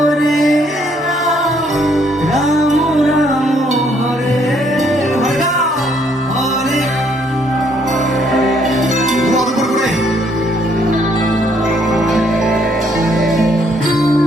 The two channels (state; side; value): normal; both; correlation 0.68